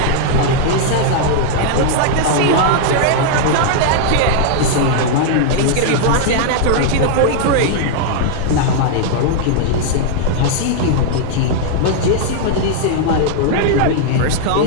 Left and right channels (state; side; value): different; both; correlation -0.01